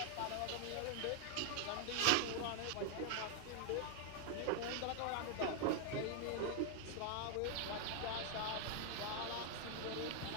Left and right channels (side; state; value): both; different; correlation 0.00